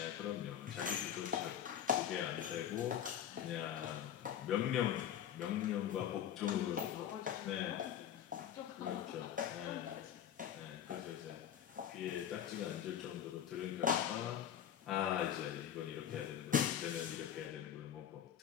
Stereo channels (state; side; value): quieter; right; 9.9 dB